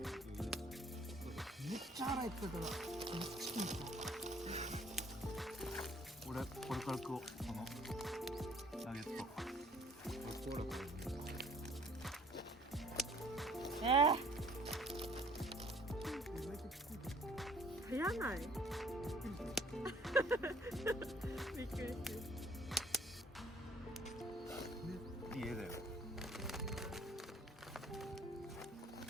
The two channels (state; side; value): normal; both; correlation 0.57